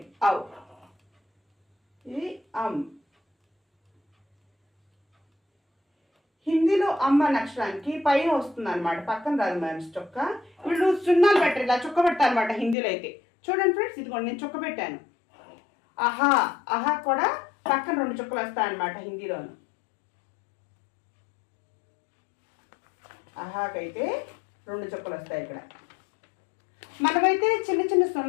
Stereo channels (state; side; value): drops out; right; at 12.8 s